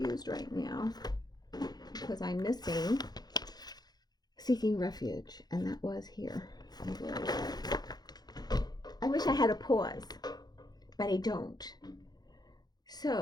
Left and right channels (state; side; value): late; right; 0.19 ms